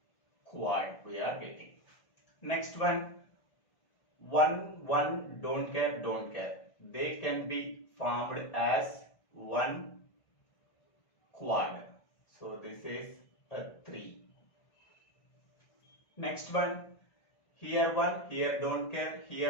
quad we are getting. Next one, one, don't care, don't care. They can be formed as one quad. So this is a 3. Next one, here don't care,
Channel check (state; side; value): late; right; 1.5 ms